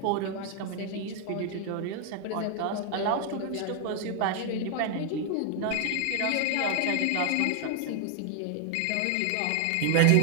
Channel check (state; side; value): different; both; correlation 0.00